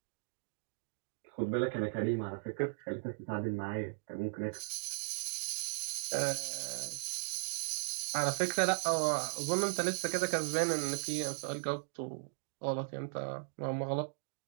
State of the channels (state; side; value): silent; left; digital silence